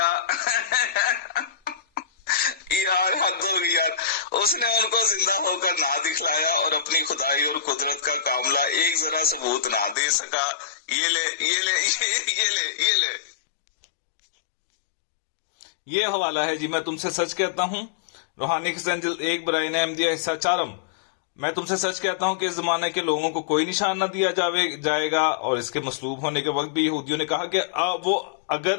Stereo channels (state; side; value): drops out; right; at 10.0 s